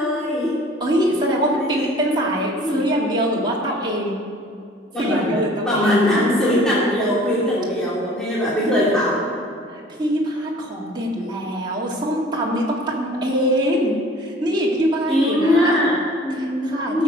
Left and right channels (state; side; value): normal; both; correlation 0.49